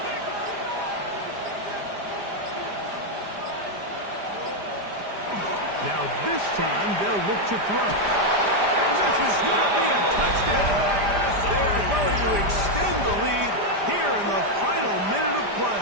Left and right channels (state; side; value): late; left; 5.0 ms